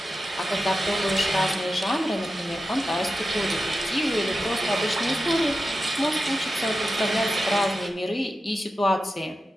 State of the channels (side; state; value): both; normal; correlation 0.91